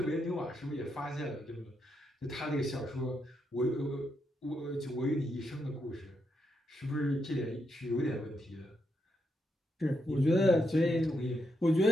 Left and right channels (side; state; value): both; normal; correlation 0.81